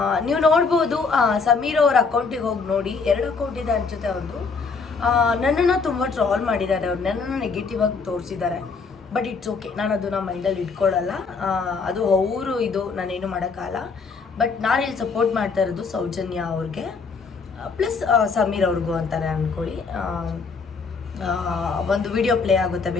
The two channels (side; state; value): right; quieter; 4.8 dB